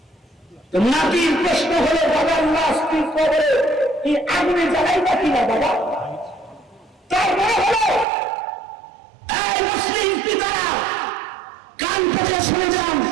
নাতির প্রশ্ন হলো, বাবার লাশ তুই কবরে কি আগুনে জ্বালাইবা কিনা বাবা? তার মানে হলো, এই মুসলিম পিতারা কান পেতে শুনে যান,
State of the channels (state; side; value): drops out; left; at 8.1 s